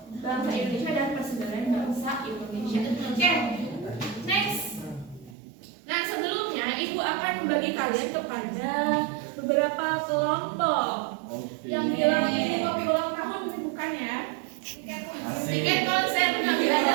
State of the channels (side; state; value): left; drops out; at 5.4 s